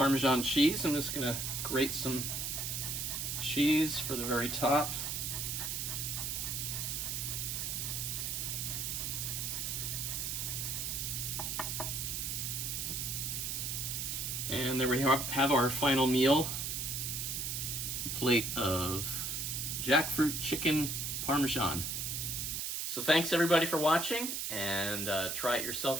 cheese. I'm just going to grate some cheese for the very top. And there we have our final meal. A plate of jackfruit chicken Parmesan. So thanks everybody for watching, and try it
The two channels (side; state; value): right; noise; hiss, 2 dB below the sound